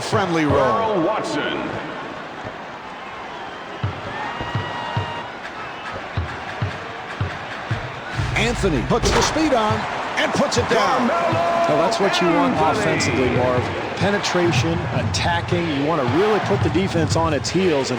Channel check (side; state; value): both; identical; correlation 1.00